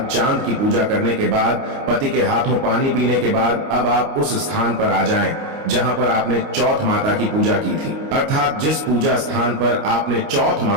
चांद की पूजा करने के बाद, पति के हाथों पानी पीने के बाद अब आप उस स्थान पर आ जाएं जहां पर आपने चौथ माता की पूजा की थी। अर्थात जिस पूजा स्थान पर आपने चौथ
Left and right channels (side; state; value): left; late; 29 ms